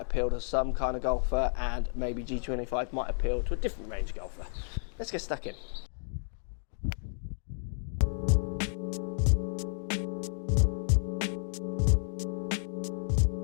appeal to some kind of golfer and maybe G25 might appeal to a different range golfer. Let's get stuck in.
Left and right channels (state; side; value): silent; right; digital silence